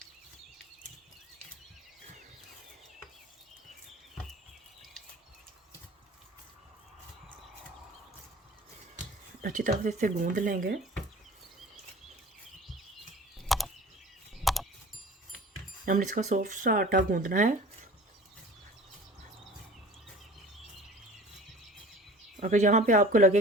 अच्छी तरह से इसे गूंद लेंगे। हमने इसका सॉफ्ट सा आटा गूंदना है। अगर यहाँ पे आपको लगे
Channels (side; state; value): both; normal; correlation 0.42